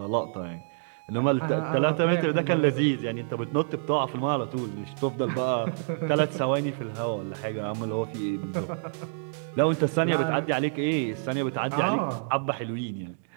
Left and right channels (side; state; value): left; silent; digital silence